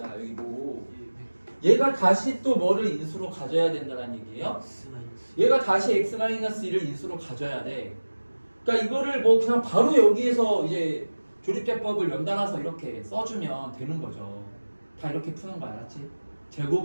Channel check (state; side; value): inverted; both; correlation -1.00